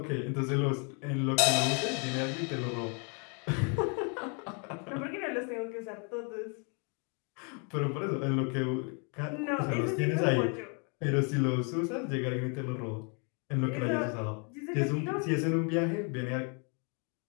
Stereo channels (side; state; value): right; quieter; 36.9 dB